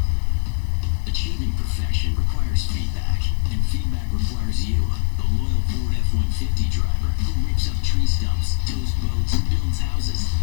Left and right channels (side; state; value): right; silent; 58 dB below the other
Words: Achieving perfection requires feedback, and feedback requires you, the loyal Ford F-150 driver who rips up tree stumps, tows boats, builds houses,